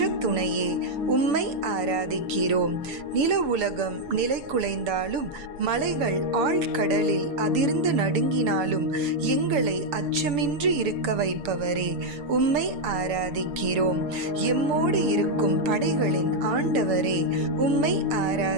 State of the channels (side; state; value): left; late; 6.5 ms